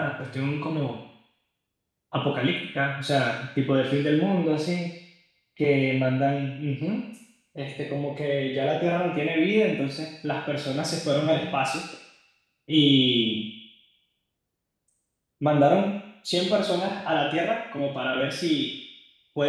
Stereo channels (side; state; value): both; identical; correlation 1.00